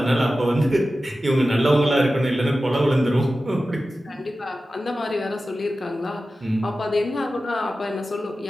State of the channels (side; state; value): both; normal; correlation 0.94